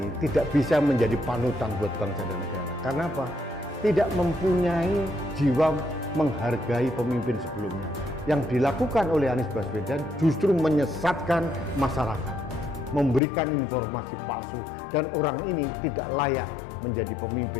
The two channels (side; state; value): right; drops out; at 13.2 s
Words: tidak bisa menjadi panutan buat bangsa dan negara. Karena apa? Tidak mempunyai jiwa menghargai pemimpin sebelumnya. Yang dilakukan oleh Anies Baswedan justru menyesatkan masyarakat, memberikan informasi palsu, dan orang ini tidak layak menjadi